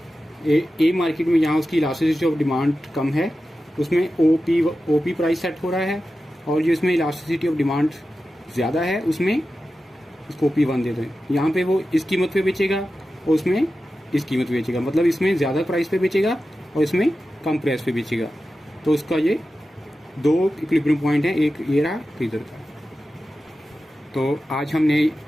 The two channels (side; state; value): both; normal; correlation 0.93